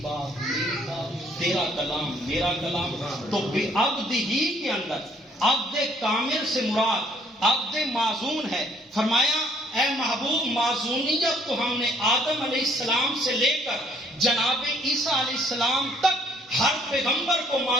بات میری بات، تیرا کلام میرا کلام. تو عبد ہی کے اندر عبد کامل سے مراد عبد معزون ہے. فرمایا اے محبوب، معزونیت تو ہم نے آدم علیہ السلام سے لے کر جناب عیسیٰ علیہ السلام تک ہر پیغمبر کو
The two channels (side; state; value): both; normal; correlation 0.63